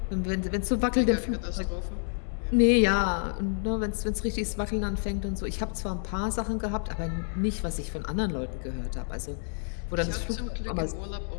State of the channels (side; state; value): right; silent; digital silence